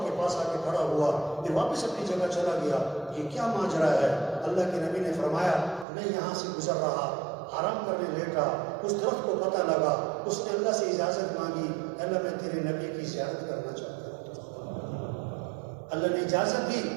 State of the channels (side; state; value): left; drops out; at 5.9 s